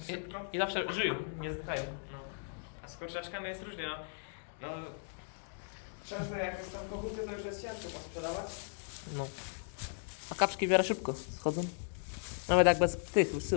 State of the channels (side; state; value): right; silent; digital silence